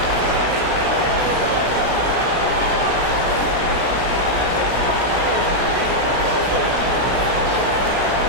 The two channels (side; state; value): left; late; 16 ms